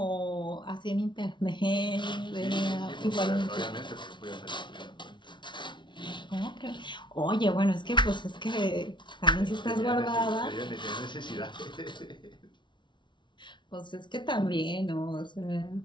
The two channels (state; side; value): late; right; 0.23 ms